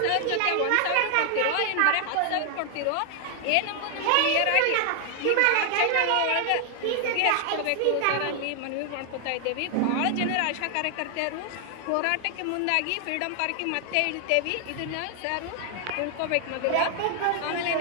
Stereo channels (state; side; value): different; both; correlation 0.00